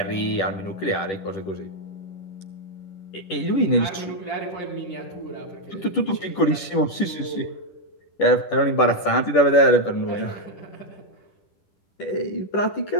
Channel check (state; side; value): late; right; 10 ms